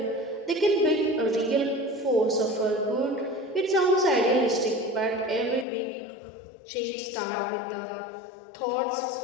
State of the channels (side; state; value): right; drops out; at 5.7 s